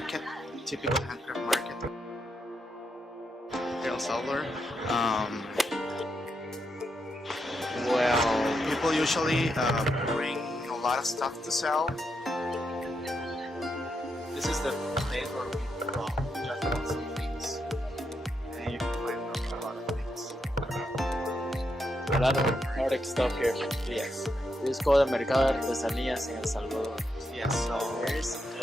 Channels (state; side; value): normal; both; correlation 0.82